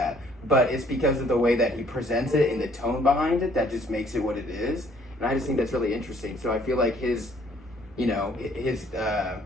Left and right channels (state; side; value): normal; both; correlation 0.61